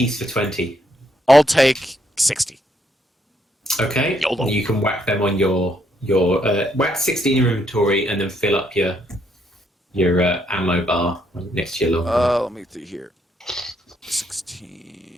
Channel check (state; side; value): normal; both; correlation 0.73